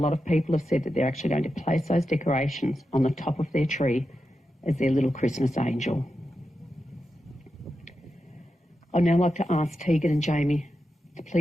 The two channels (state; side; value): normal; both; correlation 0.89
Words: of people have said that they're actually going to place those decorations on the top of their tree as their little Christmas angel. I'd now like to ask Tegan and Jamie to